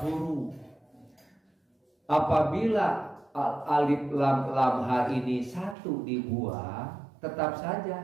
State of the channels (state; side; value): drops out; left; at 5.8 s